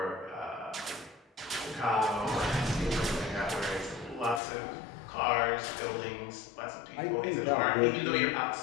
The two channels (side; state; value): right; drops out; at 4.4 s